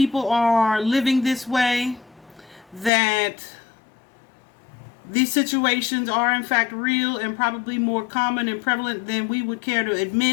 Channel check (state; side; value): drops out; right; at 2.9 s